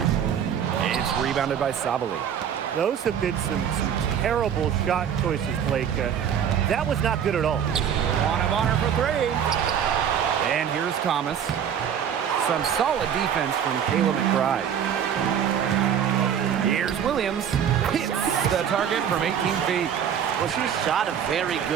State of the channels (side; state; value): left; quieter; 8.6 dB